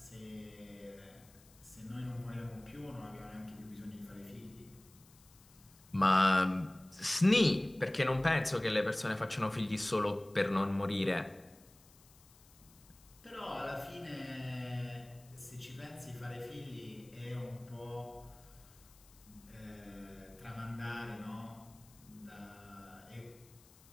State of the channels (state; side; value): noise; left; hiss, 25 dB below the sound